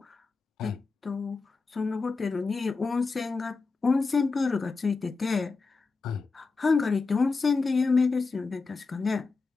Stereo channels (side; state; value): right; quieter; 4.3 dB